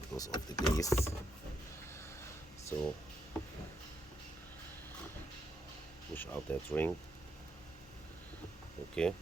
goes off the base. So push out that ring, okay,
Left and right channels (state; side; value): normal; both; correlation 0.79